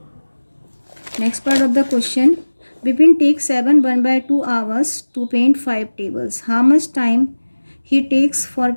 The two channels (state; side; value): inverted; both; correlation -1.00